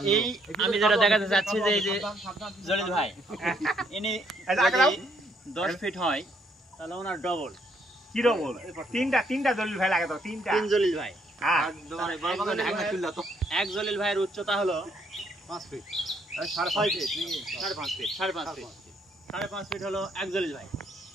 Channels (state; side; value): normal; both; correlation 0.70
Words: এই আমি যেটা দেখাতে চাচ্ছি যে এই যে জলিল ভাই ইনি 10 ফিট হয় তাহলে ওনার ডবল কি ডবল তিনটা জলিল ভাই লাগে তো তিন জলিল ভাই হ্যাঁ এক জলিল ভাইয়ের উচ্চতা হলো 5 ফিট 5.5 ফিট 5.5 ফিট 5.5 ফিট হলো এক জলিল ভাই